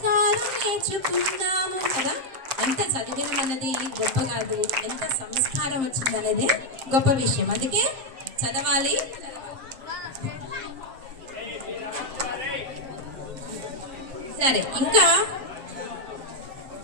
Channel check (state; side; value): late; left; 7.6 ms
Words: నేర్చుకున్నాము కదా. ఎంత చదివినం అన్నది గొప్ప కాదు, ఎంత సంస్కారం వచ్చిందనేదే గొప్ప విషయం. అందుకే చదవాలి. సరే, ఇంకా